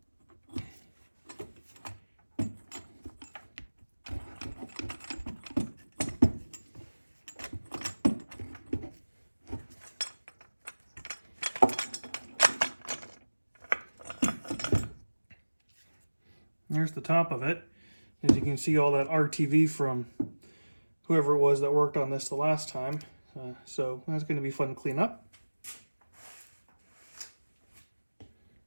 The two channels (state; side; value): inverted; both; correlation -1.00